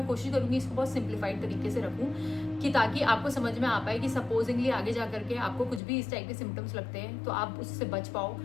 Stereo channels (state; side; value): drops out; right; at 5.8 s